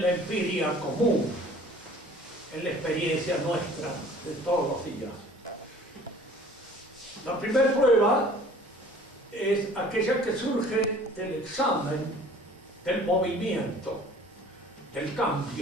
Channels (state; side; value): normal; both; correlation 0.50